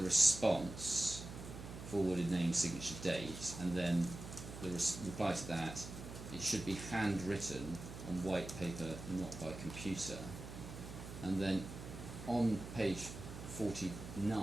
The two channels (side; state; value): right; noise; hum, 10 dB below the sound